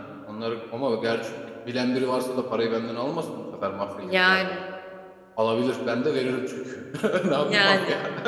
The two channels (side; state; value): both; identical; correlation 1.00